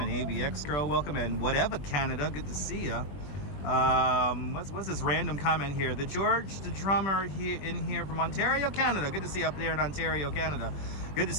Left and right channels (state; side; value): late; right; 21 ms